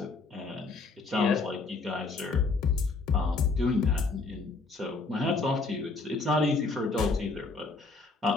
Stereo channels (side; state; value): right; quieter; 3.9 dB